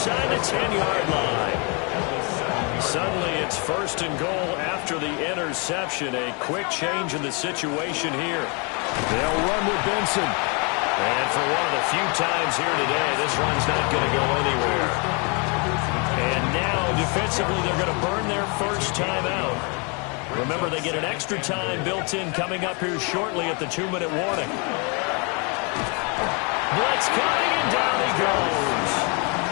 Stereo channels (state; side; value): quieter; right; 33.4 dB